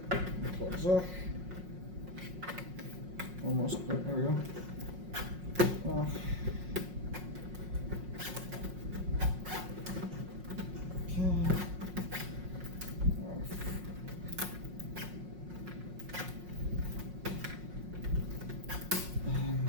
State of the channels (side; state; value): left; late; 5.5 ms